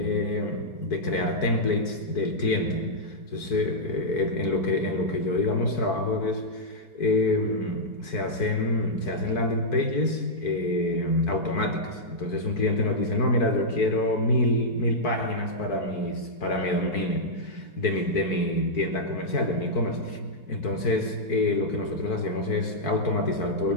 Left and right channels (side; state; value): right; late; 4.6 ms